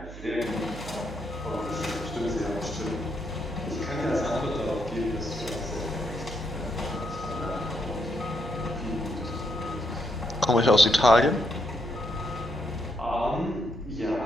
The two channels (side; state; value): right; noise; hum, 13 dB below the sound